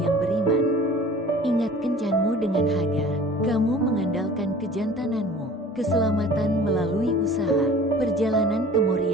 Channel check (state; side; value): normal; both; correlation 0.45